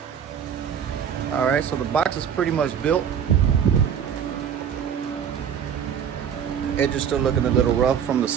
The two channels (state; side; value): quieter; left; 8.2 dB